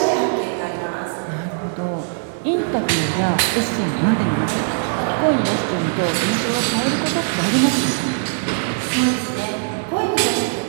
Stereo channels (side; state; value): left; silent; digital silence